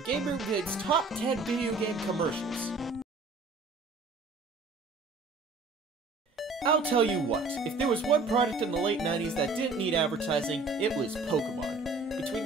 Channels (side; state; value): left; quieter; 3.6 dB